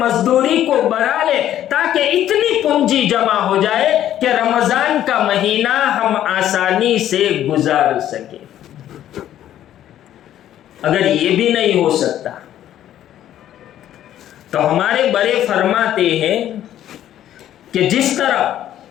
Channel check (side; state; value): right; quieter; 11.7 dB